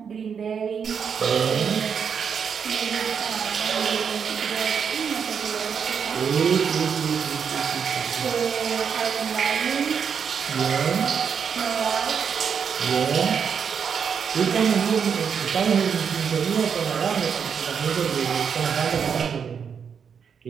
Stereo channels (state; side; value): quieter; left; 6.9 dB